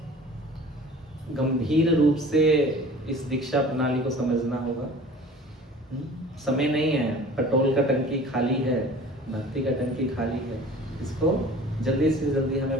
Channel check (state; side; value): normal; both; correlation 0.44